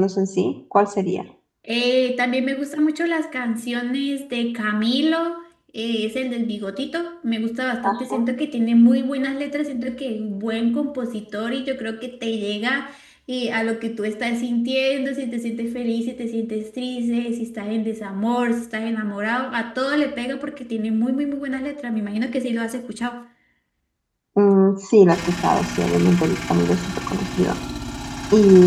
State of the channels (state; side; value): identical; both; correlation 1.00